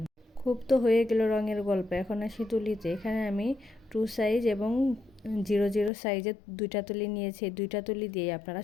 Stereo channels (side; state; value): right; drops out; at 5.9 s